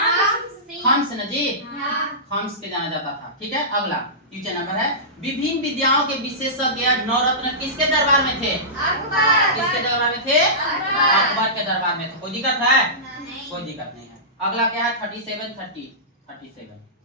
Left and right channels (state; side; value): normal; both; correlation -0.19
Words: हम्स ना जी, हम्स के जाना जाता था। ठीक है, अगला क्वेश्चन नंबर है, विभिन्न विद्याओं के विशेषज्ञ नवरत्न किसके दरबार में थे? किसके दरबार में थे? अकबर के दरबार में थे। कोई दिक्कत है? कोई दिक्कत नहीं है। अगला क्या है? 37।